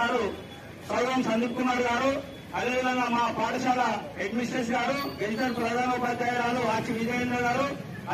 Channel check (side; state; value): both; identical; correlation 1.00